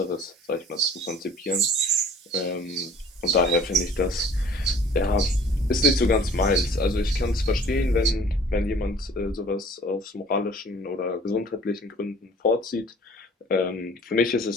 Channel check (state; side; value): normal; both; correlation 0.50